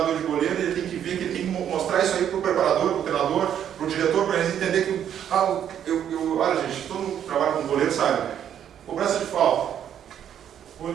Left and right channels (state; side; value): quieter; left; 9.6 dB